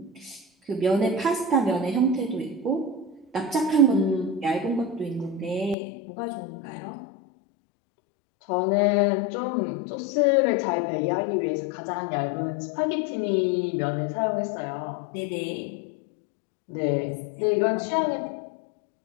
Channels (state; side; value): drops out; right; at 5.8 s